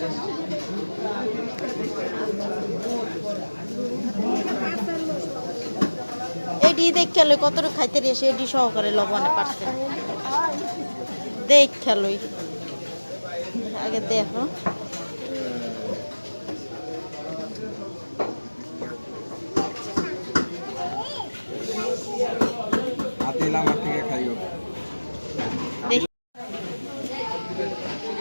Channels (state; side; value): inverted; both; correlation -1.00